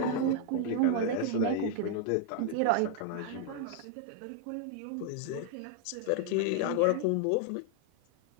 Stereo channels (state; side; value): different; both; correlation 0.00